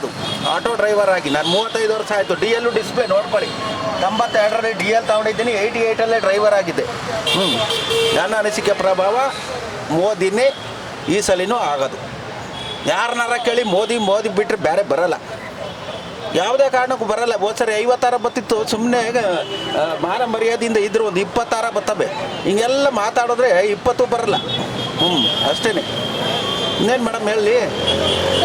ಆಟೋ ಡ್ರೈವರ್ ಆಗಿ. ನಾನು 35 ವರ್ಷ ಆಯಿತು. ಡಿ ಎಲ್ಲು ಡಿಸ್ಪ್ಲೇ ನೋಡ್ಕೊಳ್ಳಿ, 92ರಲ್ಲಿ ಡಿ ಎಲ್ ತೊಗೊಂಡಿದ್ದೀನಿ, 88ಅಲ್ಲೇ ಡ್ರೈವರ್ ಆಗಿದ್ದೆ. ನನ್ನ ಅನಿಸಿಕೆ ಪ್ರಭಾವ ಮೋದಿನೇ ಈ ಸಲಿನೂ ಆಗೋದು. ಯಾರನ್ನಾರ ಕೇಳಿ ಮೋದಿ ಬಿಟ್ಟರೆ ಬೇರೆ ಬರಲ್ಲ, ಯಾವುದೇ ಕಾರಣಕ್ಕೂ ಬರಲ್ಲ. ಹೋದ ಸರಿ 50 ಬತ್ತಿತ್ತು, ಸುಮ್ಮನೆ ಮಾನ ಮರ್ಯಾದೆಯಿಂದ ಇದ್ರು ಒಂದು 20 ಬರ್ತವೆ. ಹಿಂಗೆಲ್ಲ ಮಾತಾಡಿದ್ರೆ 20 ಬರಲ್ಲ. ಅಷ್ಟೇ. ಇನ್ನೇನು ಮೇಡಮ್ ಹೇಳಿ.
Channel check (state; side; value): identical; both; correlation 1.00